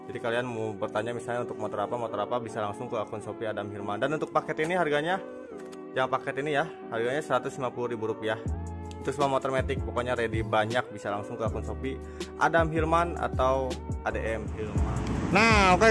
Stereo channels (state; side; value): identical; both; correlation 1.00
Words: Jadi kalian mau bertanya misalnya untuk motor apa bisa langsung ke akun Shopee Adam Hilman. Dan untuk paket ini harganya, yang paket ini ya, harganya Rp150.000. Itu semua motor matic, pokoknya ready banyak, bisa langsung ke akun Shopee Adam Hilman atau ADM Hilman. Nah